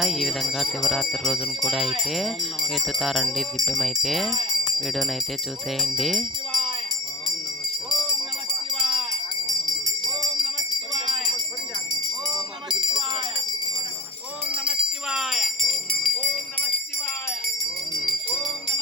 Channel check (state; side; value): normal; both; correlation 0.47